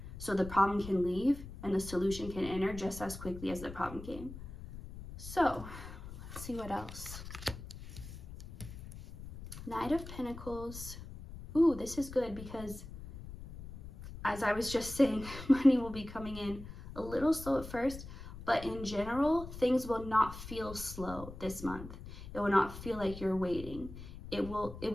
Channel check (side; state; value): left; noise; rumble, 12 dB below the sound